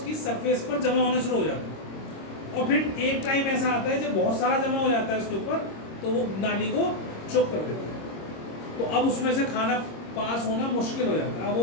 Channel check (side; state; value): right; late; 26 ms